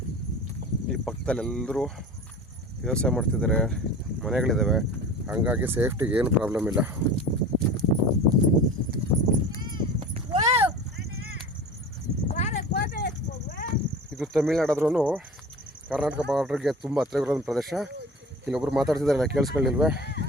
ಈ ಪಕ್ಕದಲ್ಲಿ ಎಲ್ಲರೂ ವ್ಯವಸಾಯ ಮಾಡ್ತಿದ್ದಾರೆ, ಮನೆಗಳಿದ್ದಾವೆ. ಹಂಗಾಗಿ ಸೇಫ್ಟಿಗೆ ಏನು ಪ್ರಾಬ್ಲಮ್ ಇಲ್ಲ. ಇದು ತಮಿಳ್ನಾಡಾದ್ರೂ ಕರ್ನಾಟಕ ಬಾರ್ಡ್ರಿಗೆ ತುಂಬ ಹತ್ತಿರ ಇರೋ ಪ್ರದೇಶ. ಇಲ್ಲೊಬ್ರು ಮಾತಾಡ್ತಿದ್ದಾರಲ್ಲ, ಕೇಳಿಸ್ಕೊಳ್ಳಿಲ್ವೇ?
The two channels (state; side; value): normal; both; correlation 0.37